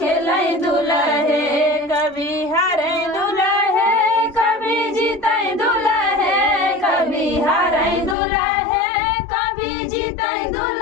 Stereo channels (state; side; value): drops out; right; at 8.2 s